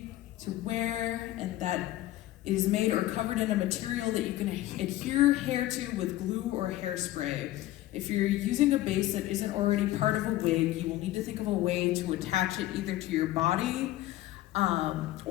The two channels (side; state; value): right; quieter; 15.4 dB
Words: to wear and that it is made or covered in a material that you can adhere hair to with glue or hairspray. If you're using a base that isn't already part of a wig, you will need to think of a way to attach it either to your body